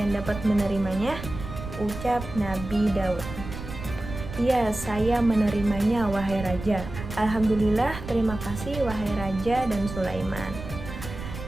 dapat menerimanya? Ucap Nabi Daud. Ya, saya menerimanya wahai raja. Alhamdulillah, terima kasih wahai raja dan Sulaiman.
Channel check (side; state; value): right; noise; rumble, 10 dB below the sound